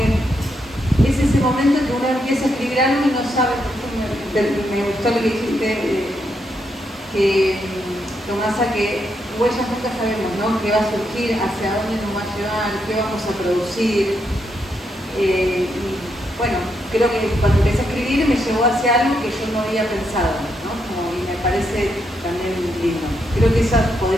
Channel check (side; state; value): both; normal; correlation 0.80